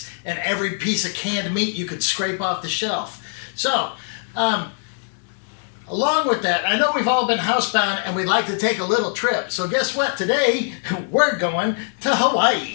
and every piece of canned meat you could scrape off the shelf. So, along with that, I know we've all been housebound and we'd like to take a little trip. So guess what? Today, we're going to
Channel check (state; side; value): silent; right; 64 dB below the other